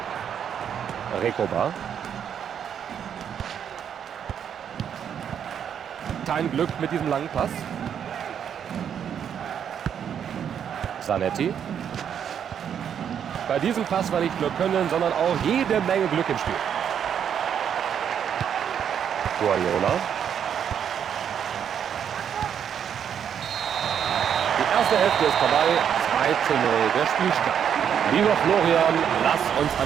Rekoba. Kein Glück mit diesem langen Pass. Zanetti. Bei diesem Pass war nicht nur Können, sondern auch jede Menge Glück im Spiel. Guardiola. Die erste Hälfte ist vorbei. 2:0 der Spielstand. Lieber Florian, lass uns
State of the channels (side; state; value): left; quieter; 8.5 dB